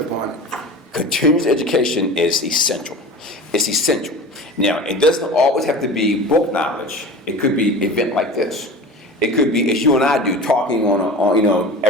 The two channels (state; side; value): normal; both; correlation 0.35